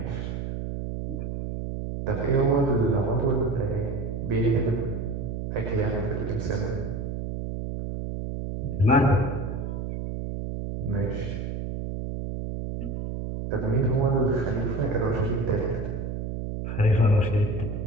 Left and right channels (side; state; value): right; noise; hum, 4 dB below the sound